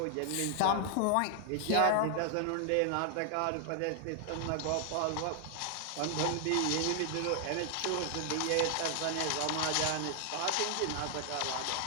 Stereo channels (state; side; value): different; both; correlation 0.00